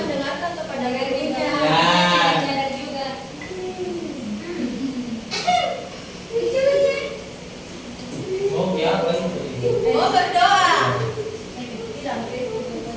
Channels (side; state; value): both; identical; correlation 1.00